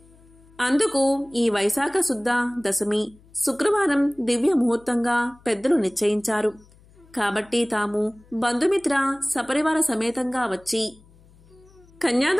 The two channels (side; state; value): left; noise; hum, 27 dB below the sound